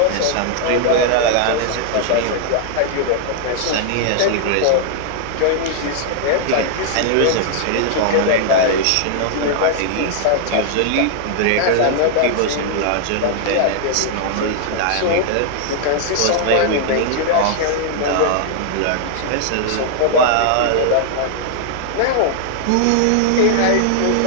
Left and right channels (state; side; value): different; both; correlation -0.01